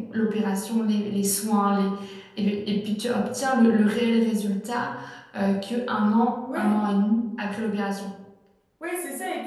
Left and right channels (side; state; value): both; identical; correlation 1.00